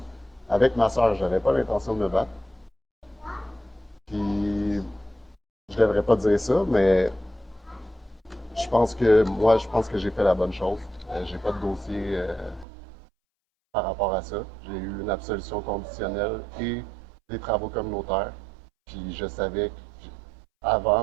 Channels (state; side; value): drops out; left; at 12.7 s